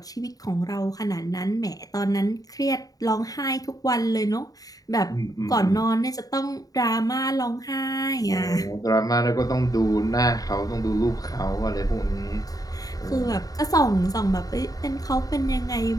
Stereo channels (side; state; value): right; late; 0.18 ms